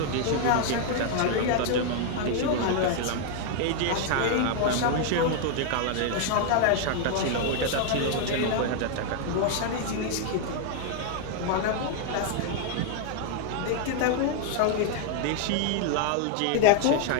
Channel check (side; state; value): both; different; correlation 0.00